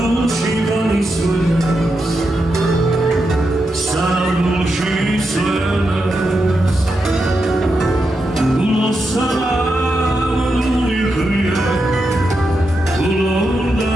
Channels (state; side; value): normal; both; correlation 0.86